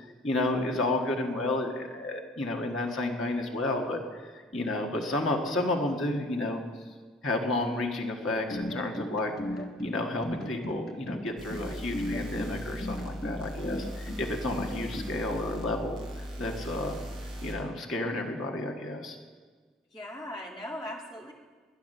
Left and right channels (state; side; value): normal; both; correlation 0.52